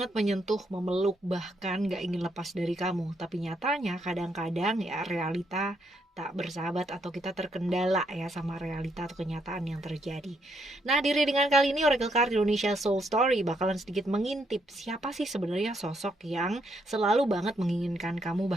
menyentuh, memeluk, bahkan gak ingin lepas dari kamu. Tapi nyatanya kadang-kadang ya realita tak bersahabat atau kita terkendala ya sama realita atau kenyataan yang terjadi. Nah, di readingan kali ini Oracle Card Indonesia Soul Story bakalan sedikit mengintip siapa sih sebenarnya sosok yang selalu banget menginginkan kamu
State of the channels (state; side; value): normal; both; correlation 0.75